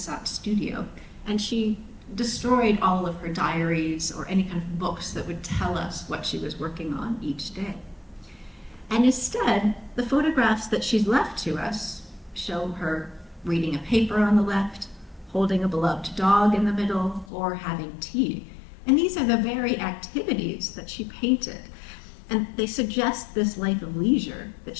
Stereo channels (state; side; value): drops out; right; at 17.2 s